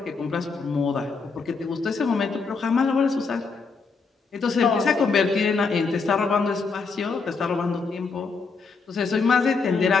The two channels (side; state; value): right; quieter; 4.7 dB